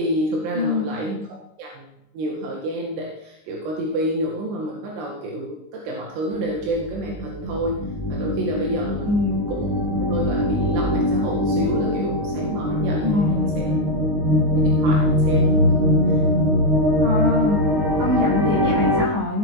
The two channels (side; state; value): left; late; 19 ms